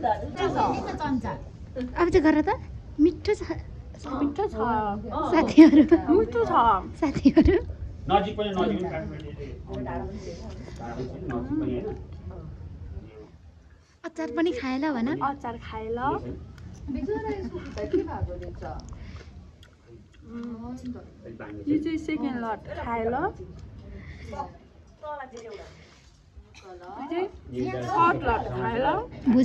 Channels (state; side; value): identical; both; correlation 1.00